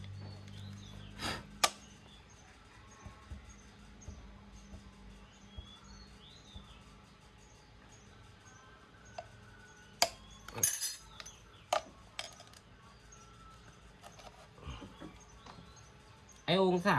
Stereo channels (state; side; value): identical; both; correlation 1.00